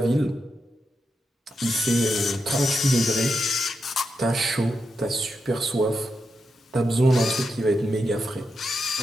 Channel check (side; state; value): both; normal; correlation 0.86